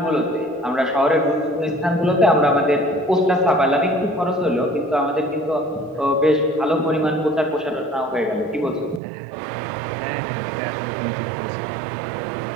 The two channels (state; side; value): drops out; left; at 9.0 s